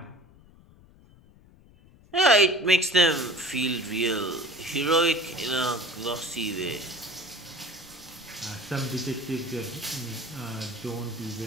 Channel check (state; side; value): noise; left; rumble, 25 dB below the sound